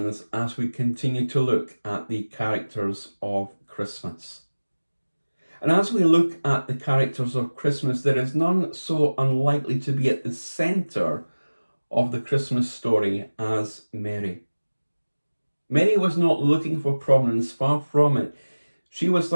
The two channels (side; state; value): both; inverted; correlation -1.00